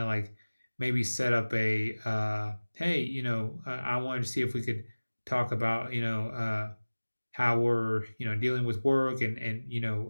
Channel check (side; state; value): both; inverted; correlation -1.00